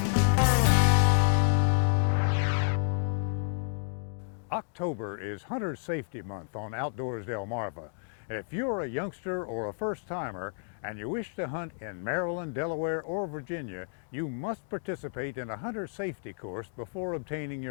October is Hunter Safety Month on Outdoors Delmarva. If you're a youngster or a first-timer and you wish to hunt in Maryland, Delaware, or Virginia, you must participate in a hunter safety course before obtaining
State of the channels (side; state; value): right; silent; 58 dB below the other